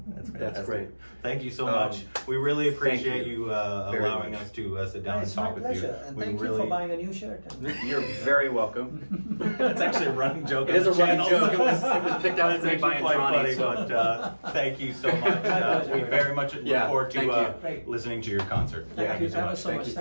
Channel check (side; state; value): both; inverted; correlation -1.00